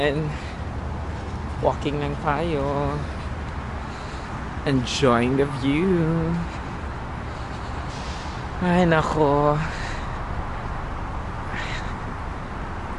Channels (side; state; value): both; identical; correlation 1.00